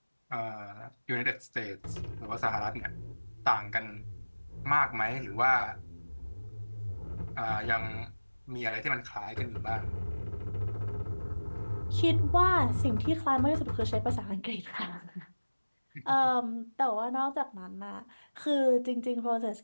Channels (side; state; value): both; inverted; correlation -1.00